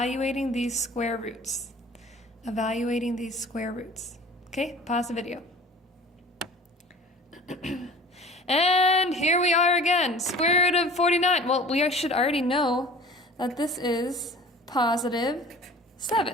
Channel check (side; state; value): both; normal; correlation 0.44